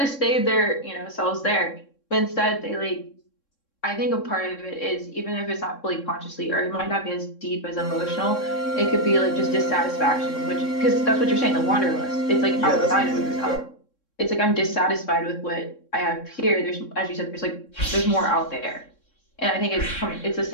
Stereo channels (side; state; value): right; late; 3.6 ms